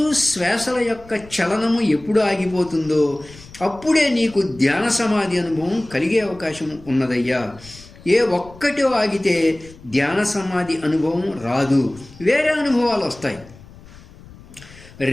శ్వాసల యొక్క చలనము ఎప్పుడు ఆగిపోతుందో అప్పుడే నీకు ధ్యాన సమాధి అనుభవం కలిగే అవకాశం ఉన్నదయ్యా. ఏ ఒక్కటి ఆగితే ధ్యాన సమాధి అనుభవం రాదు, వేరే అనుభవాలు వస్తాయి.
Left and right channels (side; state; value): left; noise; rumble, 21 dB below the sound